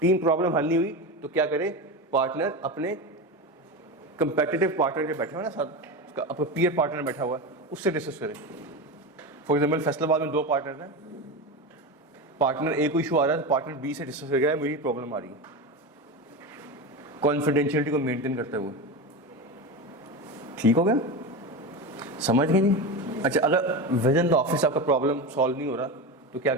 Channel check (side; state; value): both; normal; correlation 0.21